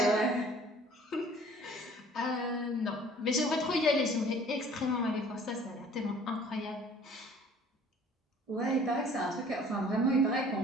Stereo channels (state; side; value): normal; both; correlation 0.52